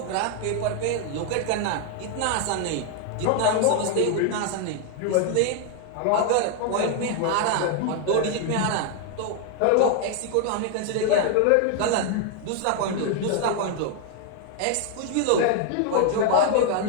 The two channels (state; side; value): different; both; correlation 0.00